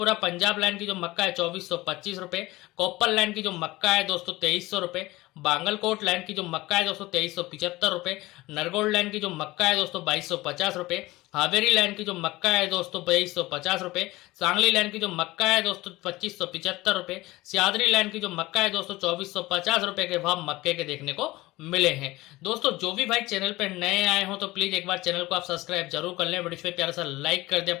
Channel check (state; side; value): quieter; right; 19.5 dB